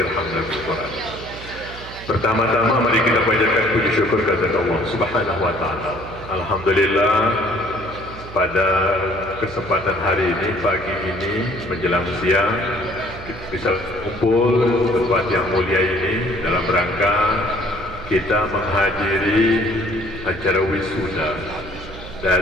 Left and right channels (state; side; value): noise; right; hum, 15 dB below the sound